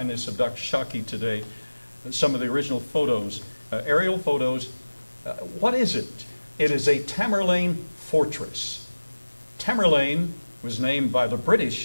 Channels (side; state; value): both; inverted; correlation -1.00